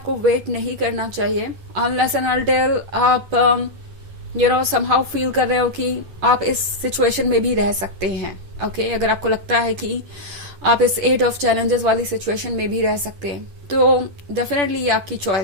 वेट नहीं करना चाहिए अनलेस एंड अनटिल आप समहाउ फील कर रहे हो कि आप इस सिचुएशन में भी रह सकते हैं। ओके अगर आपको लगता है कि आप इस 8 ऑफ चैलेंजेस वाली सिचुएशन में भी रह सकते हैं तो डेफिनेटली ये आपकी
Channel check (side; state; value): left; late; 10 ms